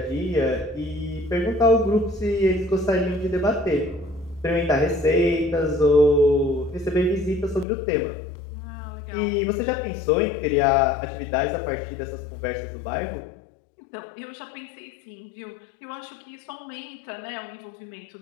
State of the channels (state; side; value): drops out; right; at 7.7 s